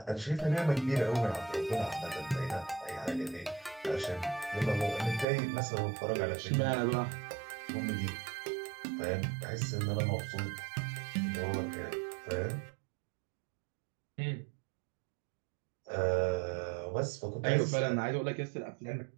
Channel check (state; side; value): drops out; left; at 5.2 s